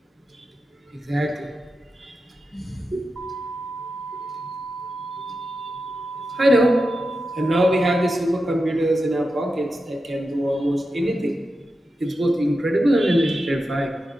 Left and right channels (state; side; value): normal; both; correlation 0.90